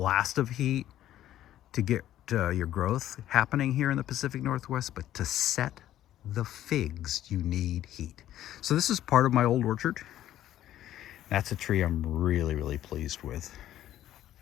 of heat to get your growth happening here in the Pacific Northwest, but to set the figs, you need heat. So this is part of my old orchard. That's a tree I'm really, really pleased with.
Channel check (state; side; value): quieter; right; 12.6 dB